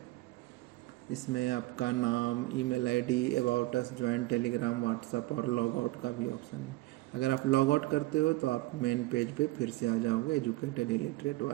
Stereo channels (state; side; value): quieter; left; 19.8 dB